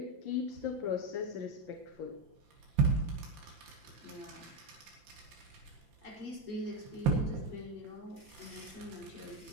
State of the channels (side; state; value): left; late; 5.8 ms